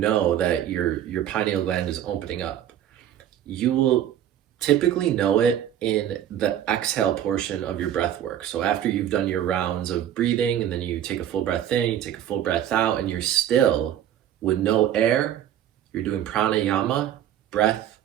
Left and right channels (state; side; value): quieter; left; 10.8 dB